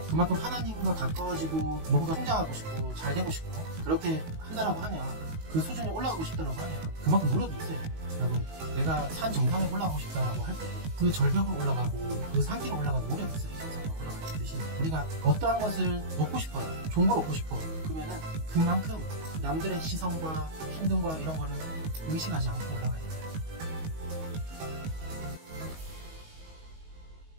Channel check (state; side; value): late; left; 19 ms